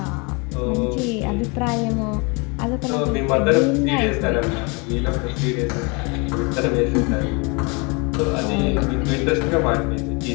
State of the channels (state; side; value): quieter; right; 30.5 dB